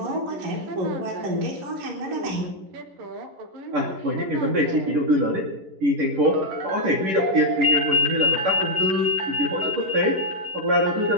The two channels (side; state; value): left; late; 10 ms